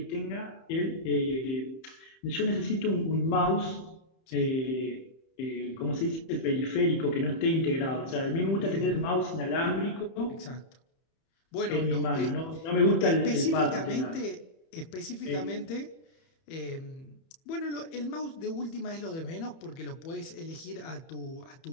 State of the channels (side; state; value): right; late; 31 ms